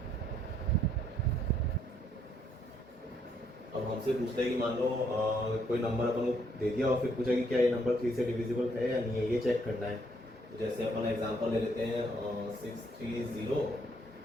अब हमसे पूछता है कि मान लो कोई नंबर अपन को दे दिया और फिर पूछा कि क्या ये नंबर 3 से डिविजिबल है या नहीं है, ये चेक करना है। तो जैसे अपन एग्जांपल ले लेते हैं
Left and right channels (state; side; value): normal; both; correlation 0.70